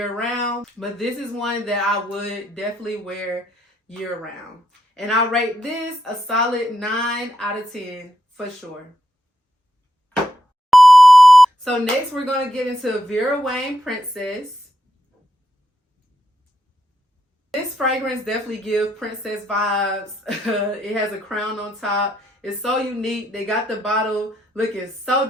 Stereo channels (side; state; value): both; normal; correlation 0.82